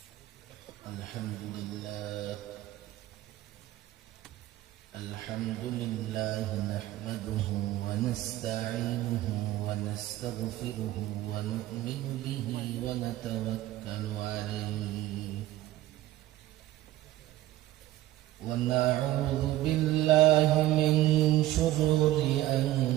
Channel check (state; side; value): quieter; left; 15.3 dB